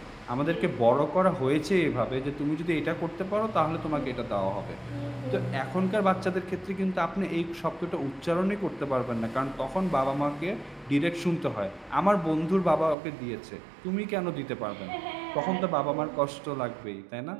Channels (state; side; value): drops out; left; at 13.0 s